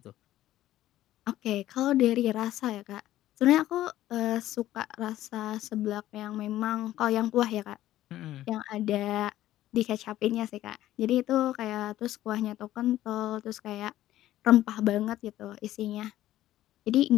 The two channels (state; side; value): quieter; right; 14.0 dB